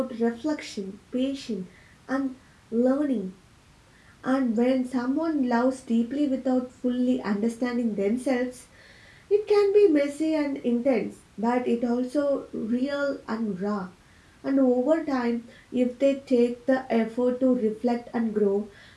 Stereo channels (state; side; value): identical; both; correlation 1.00